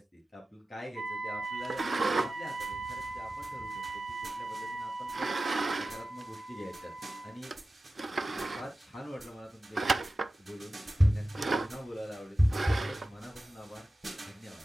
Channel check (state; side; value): normal; both; correlation 0.95